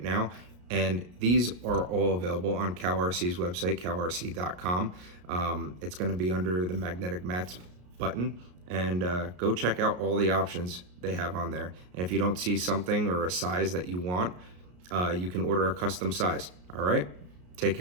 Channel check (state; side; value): late; left; 33 ms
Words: now. And these are all available on CowRC's website, cowrc.com. It's going to be under the magnetic mats button. And go check out all the options they have on there. And if you don't see something or a size that you want, you can order a custom size. All right? Take